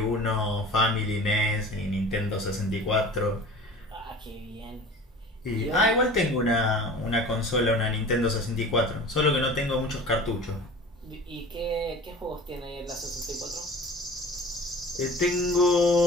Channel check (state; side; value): normal; both; correlation 0.40